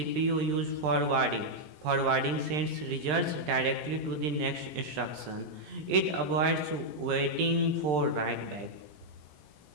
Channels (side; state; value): left; late; 20 ms